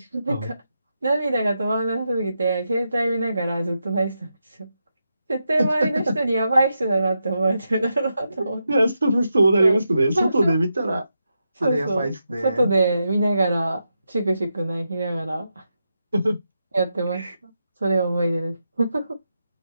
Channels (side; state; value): both; inverted; correlation -0.85